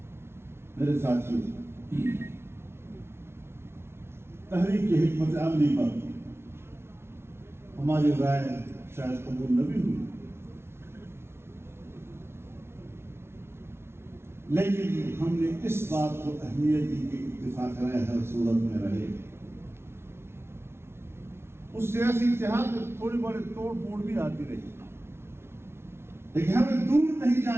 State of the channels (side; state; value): left; late; 0.12 ms